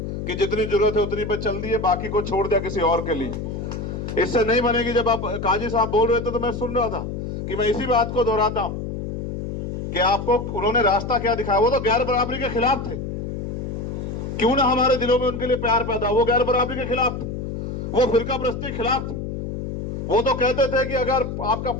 कि जितनी जरूरत है उतनी पे चल दिए, बाकी को छोड़ दिया किसी और के लिए। इससे नहीं बनेगी। जब आप काजी साहब बोल रहे थे तो मैं सुन रहा था कि मैं इसी बात को दोहराता हूं कि आपको उन्होंने रास्ता क्या दिखाया। वो तो गैर बराबरी के खिलाफ थे, क्यों ना हमारे दिलों में उनके लिए प्यार पैदा। वो गैर बराबरी के खिलाफ थे, वो फिरका प्रस्ती के खिलाफ थे। वो तो कहते थे कि अगर आपका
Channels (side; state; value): left; noise; hum, 5 dB below the sound